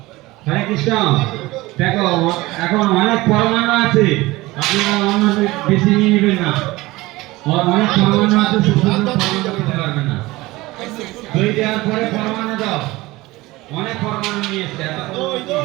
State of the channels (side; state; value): left; quieter; 19.9 dB